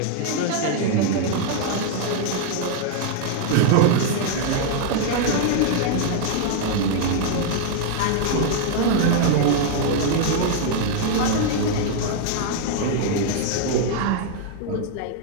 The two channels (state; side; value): different; both; correlation 0.00